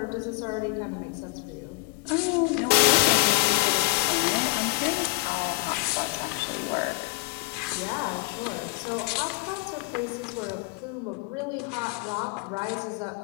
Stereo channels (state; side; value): quieter; right; 23.3 dB